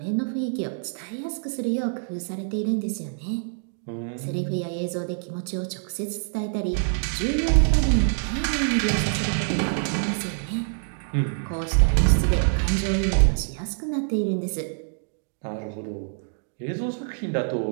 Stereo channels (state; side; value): silent; left; digital silence